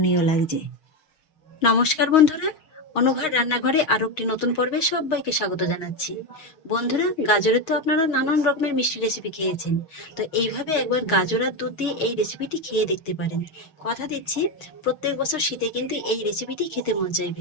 লাগছে। নমস্কার বন্ধুরা, অনুভার রান্নাঘরে আরো একটি নতুন পর্বে সবাইকে স্বাগত জানাচ্ছি। বন্ধুরা, গাজরের তো আপনারা নানান রকমের মিষ্টি রেসিপি খেয়েছেন, তো এইভাবে একবার গাজর আর দুধ দিয়ে এই রেসিপিটি খেয়ে দেখতে পারেন। কথা দিচ্ছি প্রত্যেক বছর শীতে কিন্তু এই রেসিপিটি খেতে মন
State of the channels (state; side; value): late; right; 6.4 ms